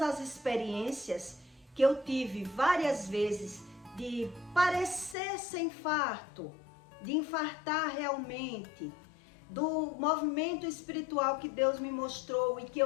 as experiências que eu tive várias vezes de parecer ser infarto, de infartar realmente, do movimento espiritual que Deus me mostrou e que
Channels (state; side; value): drops out; right; at 5.2 s